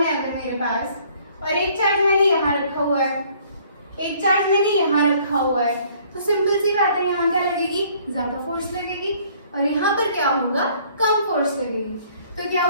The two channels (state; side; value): inverted; both; correlation -0.59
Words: है अगर मेरे पास, और एक चार्ज मैंने यहाँ रखा हुआ है, एक चार्ज मैंने यहाँ रखा हुआ है, तो सिंपल सी बात है, यहाँ क्या लगेगी, ज्यादा फोर्स लगेगी, और यहाँ पर क्या होगा, कम फोर्स लगेगी। तो क्या